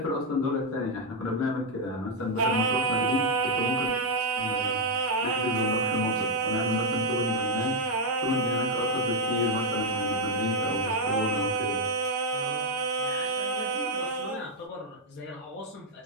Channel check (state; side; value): normal; both; correlation 0.01